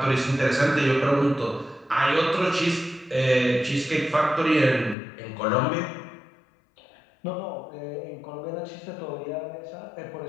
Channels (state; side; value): drops out; right; at 5.0 s